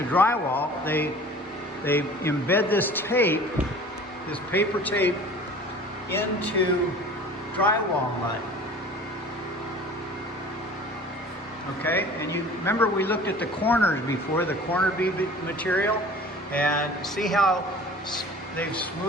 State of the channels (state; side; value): normal; both; correlation 0.44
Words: drywall, they embed this tape, this paper tape, into drywall mud. Okay, and you remember we looked at the corners before, the corner bead material, and see how they've